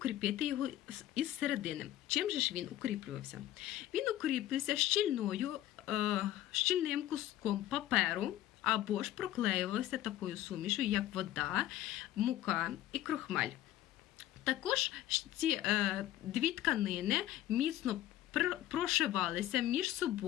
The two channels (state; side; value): quieter; right; 13.6 dB